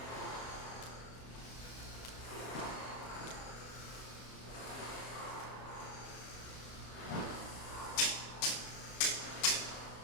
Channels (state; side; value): late; right; 26 ms